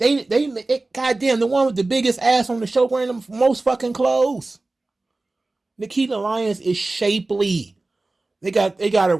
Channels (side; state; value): left; quieter; 3.1 dB